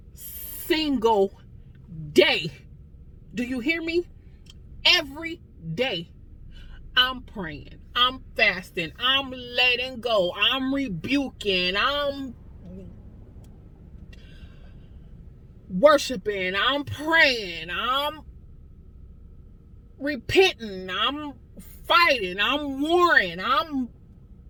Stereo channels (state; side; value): identical; both; correlation 1.00